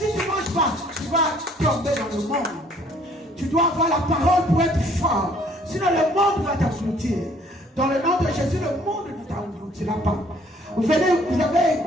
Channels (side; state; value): both; normal; correlation 0.60